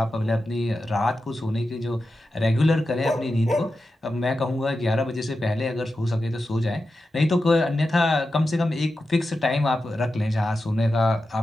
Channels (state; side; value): normal; both; correlation 0.91